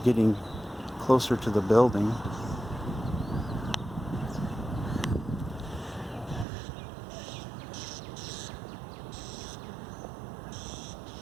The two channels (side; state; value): left; drops out; at 6.5 s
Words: getting closer to the building.